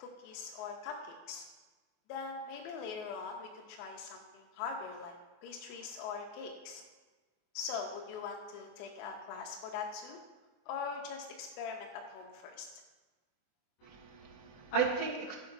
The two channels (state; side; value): late; right; 24 ms